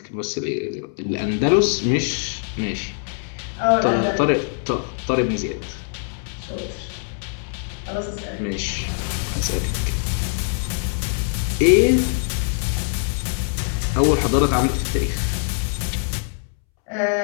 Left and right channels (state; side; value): silent; right; 64 dB below the other